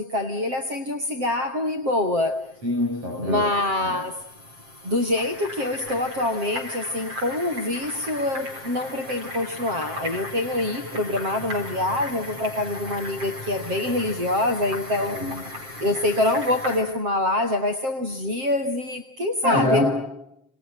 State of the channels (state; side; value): late; left; 7.6 ms